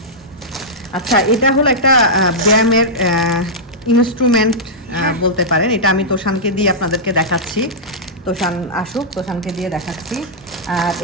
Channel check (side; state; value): both; normal; correlation -0.11